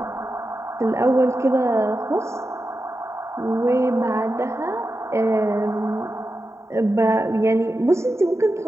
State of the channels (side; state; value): left; late; 0.14 ms